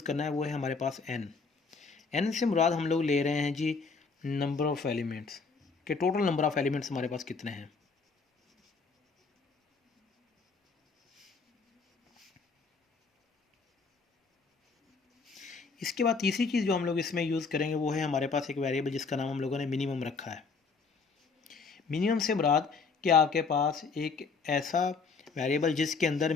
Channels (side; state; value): right; quieter; 4.7 dB